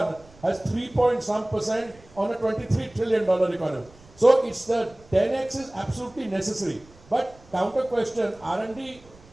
has 3.some% on a $23 trillion economy. So it's the 10x is absolutely necessary. But counter question, R&D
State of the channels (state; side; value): noise; right; rumble, 25 dB below the sound